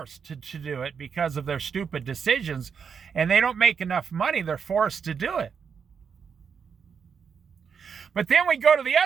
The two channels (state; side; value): quieter; left; 6.5 dB